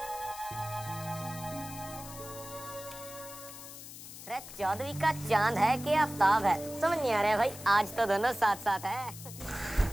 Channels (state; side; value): noise; left; hiss, 13 dB below the sound